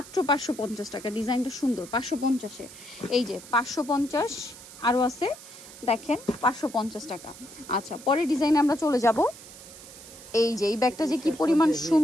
550 টাকা। ডিজাইনটা সুন্দর, 550-এ। এই যে 550, আরও আছে দেখেন, 550 টাকা। আচ্ছা, পরের ডিজাইনে আমরা চলে যাব। এই যে এই ব্যাগটা যে কি পরিমাণ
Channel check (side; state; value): right; noise; hiss, 17 dB below the sound